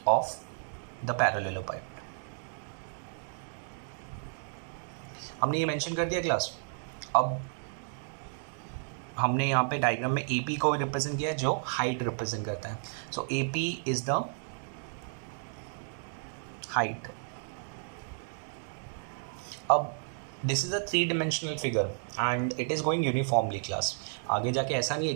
ऑफ द पैरेललोपाइड. हमने ये मेंशन कर दिया क्लास. अब हमने यहाँ पे डायग्राम में ए पी को रिप्रेजेंट किया है, जो हाइट रिप्रेजेंट करता है. So a p is the height. अब this is a 3 dimensional figure and it is going uniformly class. आगे जाके ऐसा नहीं है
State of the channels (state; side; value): silent; left; 56 dB below the other